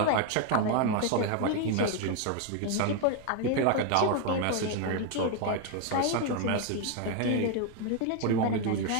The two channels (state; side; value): different; both; correlation 0.01